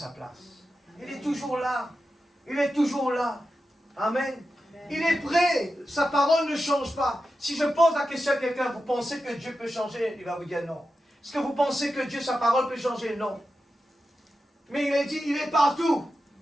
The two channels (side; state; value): both; normal; correlation 0.90